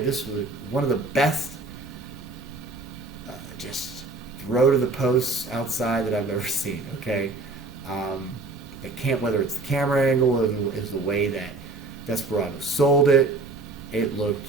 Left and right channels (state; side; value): quieter; left; 3.4 dB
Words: this was one of the best just throw to the posts outside that I've ever seen. Okay, whether it's the camera angle or is the way that Desperado sold it, it